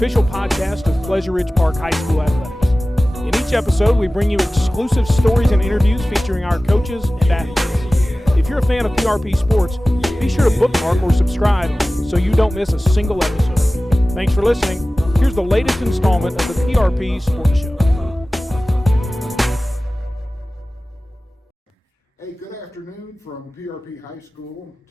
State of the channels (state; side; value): normal; both; correlation 0.97